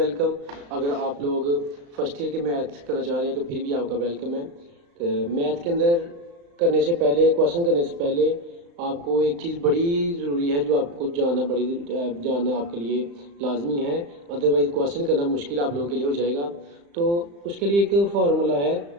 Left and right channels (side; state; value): left; late; 35 ms